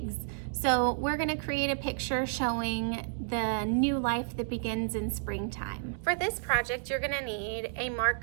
So we're gonna create a picture showing the new life that begins in springtime. For this project, you're gonna need a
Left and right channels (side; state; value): left; silent; digital silence